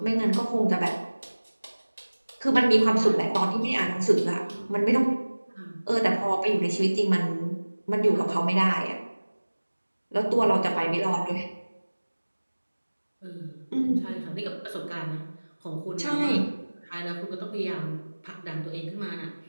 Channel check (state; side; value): inverted; both; correlation -1.00